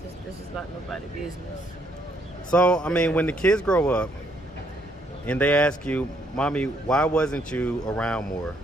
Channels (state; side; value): normal; both; correlation 0.70